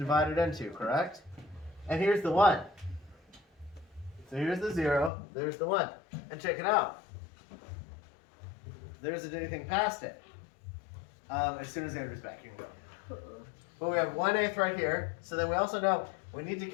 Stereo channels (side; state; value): right; drops out; at 5.1 s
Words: it into, correct? And here's the 1. So here's the 0, there's the 1. And check it out. There isn't anything past it. As soon as Andrew's back, you can go. But we have 1/8 right here. So then we also know we need to